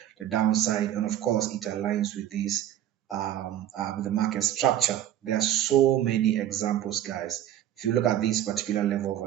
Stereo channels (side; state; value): left; quieter; 11.8 dB